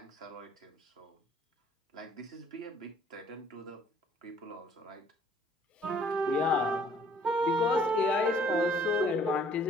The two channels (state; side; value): normal; both; correlation 0.59